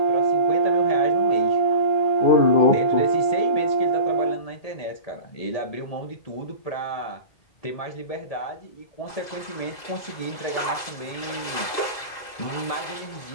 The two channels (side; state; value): right; late; 2.0 ms